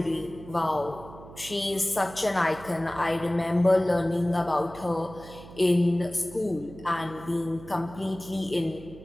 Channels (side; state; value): right; noise; hum, 17 dB below the sound